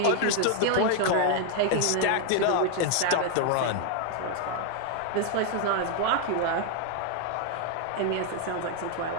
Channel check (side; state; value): both; different; correlation 0.00